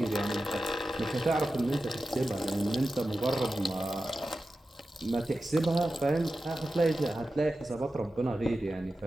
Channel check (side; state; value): both; normal; correlation 0.93